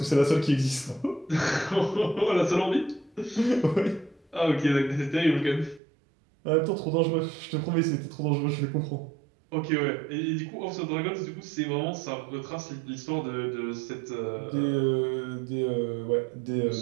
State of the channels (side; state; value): left; drops out; at 5.8 s